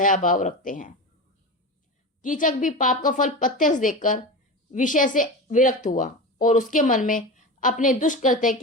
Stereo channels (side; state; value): both; normal; correlation 0.25